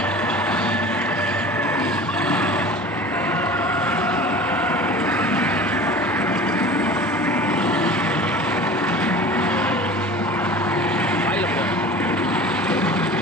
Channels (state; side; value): normal; both; correlation 0.38